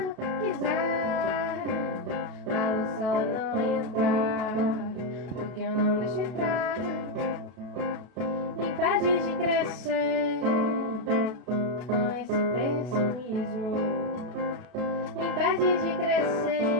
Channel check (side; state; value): left; late; 32 ms